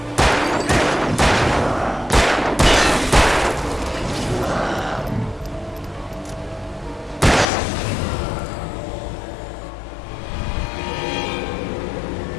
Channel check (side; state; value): right; drops out; at 7.5 s